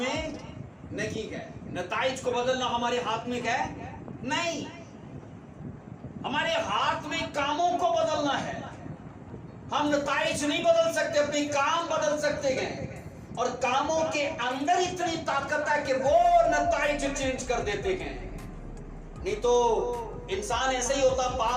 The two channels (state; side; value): identical; both; correlation 1.00